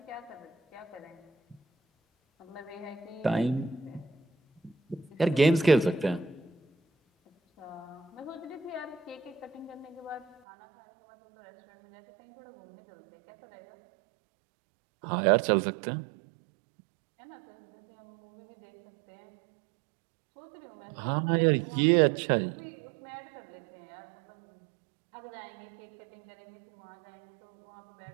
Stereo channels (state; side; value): drops out; left; at 10.4 s